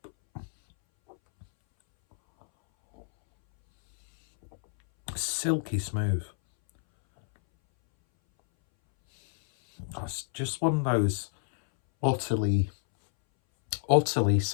Silky smooth. It's just one of those utterly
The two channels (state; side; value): silent; right; 59 dB below the other